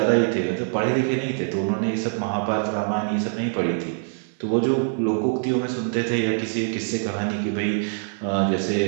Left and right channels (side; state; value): left; silent; 57 dB below the other